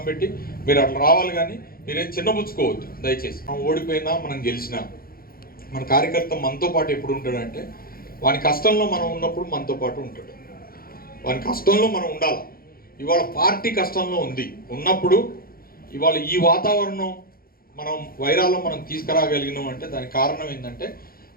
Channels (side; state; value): right; late; 0.43 ms